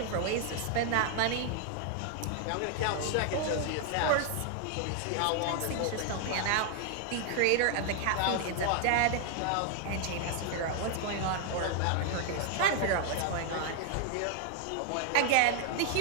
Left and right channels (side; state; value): both; different; correlation 0.00